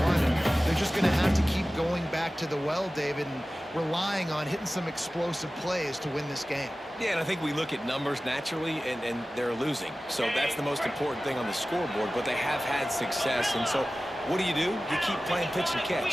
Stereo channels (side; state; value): both; normal; correlation 0.96